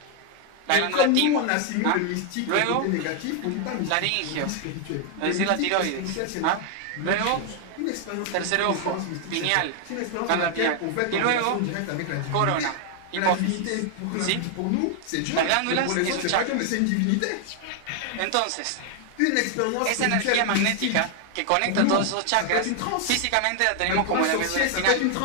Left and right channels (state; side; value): different; both; correlation 0.00